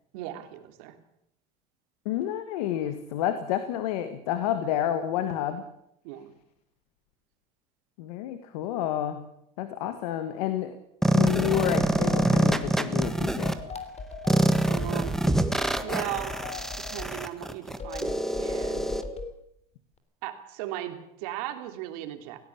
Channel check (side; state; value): both; normal; correlation 0.61